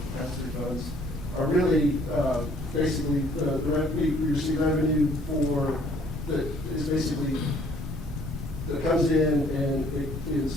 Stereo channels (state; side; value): normal; both; correlation 0.60